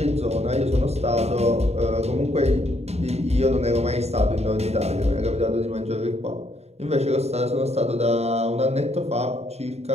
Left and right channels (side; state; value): left; late; 0.31 ms